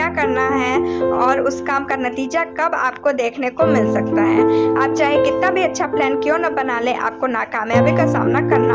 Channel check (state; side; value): identical; both; correlation 1.00